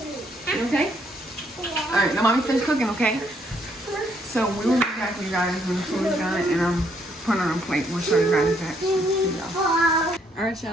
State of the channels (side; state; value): both; normal; correlation 0.70